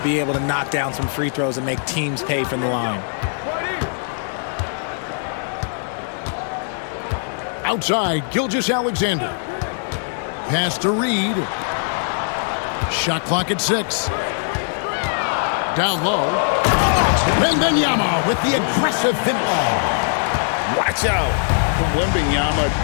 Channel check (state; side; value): silent; right; 65 dB below the other